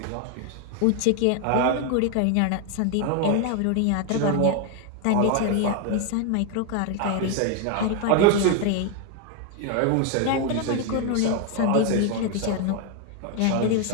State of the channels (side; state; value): both; different; correlation 0.01